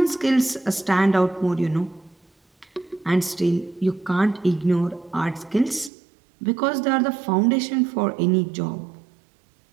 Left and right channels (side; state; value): left; drops out; at 5.9 s